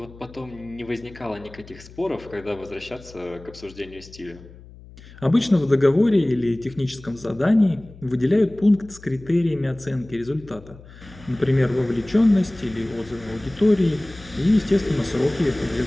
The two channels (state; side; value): noise; left; hum, 20 dB below the sound